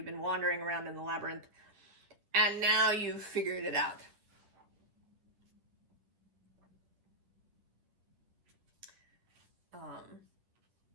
been wandering around in the labyrinth. And now you've figured it out.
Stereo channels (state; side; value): late; left; 10 ms